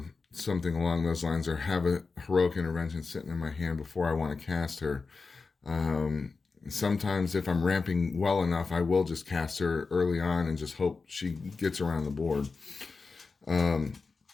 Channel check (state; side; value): quieter; right; 4.3 dB